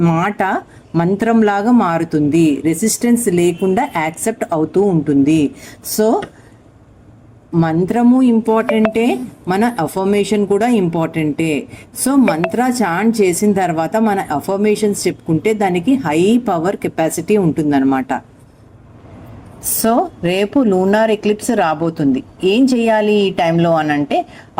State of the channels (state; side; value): identical; both; correlation 1.00